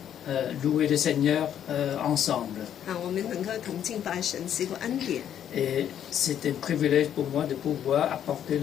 louer le Seigneur ensemble. 我们能够同敬拜神是一个恩典。 Et c'est un privilège pour moi de pouvoir apporter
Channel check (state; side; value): quieter; right; 9.9 dB